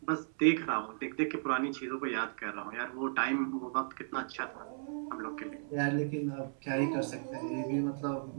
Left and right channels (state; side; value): silent; left; 54 dB below the other